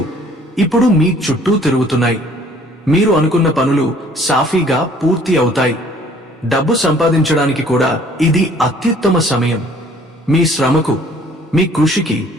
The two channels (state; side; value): normal; both; correlation 0.56